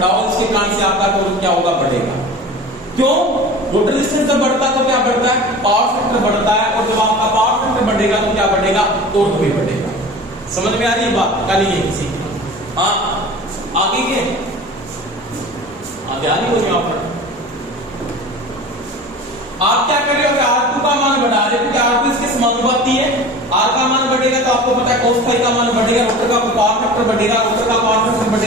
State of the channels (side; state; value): both; normal; correlation 0.37